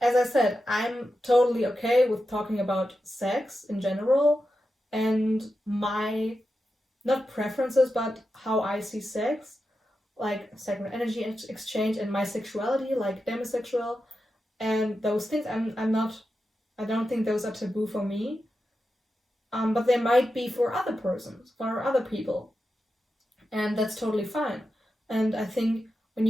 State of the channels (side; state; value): both; normal; correlation 0.90